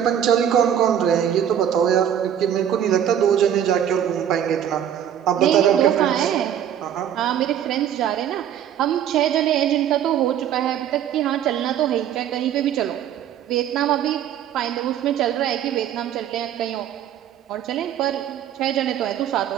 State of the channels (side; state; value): left; quieter; 9.9 dB